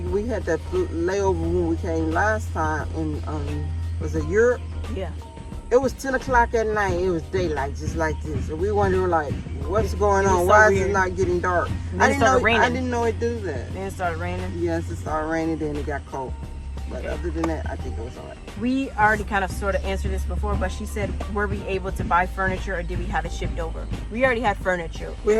we had that layover when we came last time in was it Europe? Yeah. It was 10 o'clock at night. It was daylight, just like this. And we wondered, like, what's going it was on? so Why is weird. it not getting dark? And I then it didn't know. started raining. I didn't know it do that. Then it started raining. Yes, it started raining, then it got cold. But Okay. other than that, I think it was alright. We already kind of sort of answered this before, but she said, were we able to buy furniture or did we have it shipped over? We already had furniture. We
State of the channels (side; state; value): both; identical; correlation 1.00